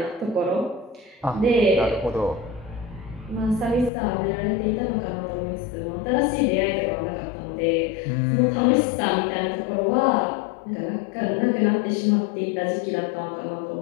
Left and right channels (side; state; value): right; drops out; at 3.9 s